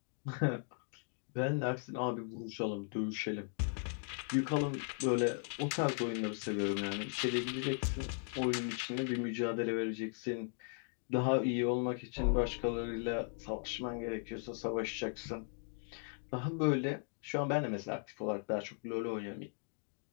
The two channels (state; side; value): silent; right; 53 dB below the other